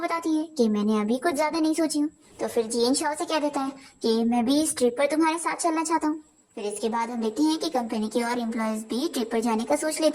है कि मैंने अभी कुछ ज्यादा नहीं सोची हूँ। तो फिर जियन शाओ से कह देता है कि मैं भी इस ट्रिप पर तुम्हारे साथ चलना चाहता हूँ। फिर इसके बाद हम देखते हैं कि कंपनी के और एम्प्लॉयज भी ट्रिप पर जाने का सोच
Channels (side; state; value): both; identical; correlation 1.00